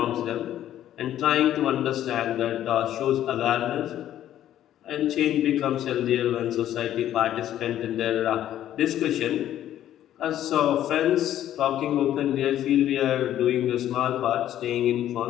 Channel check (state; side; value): quieter; right; 11.9 dB